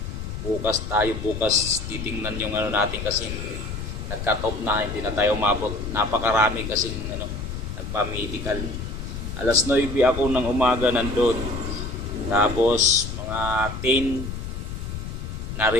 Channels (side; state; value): left; noise; rumble, 6 dB below the sound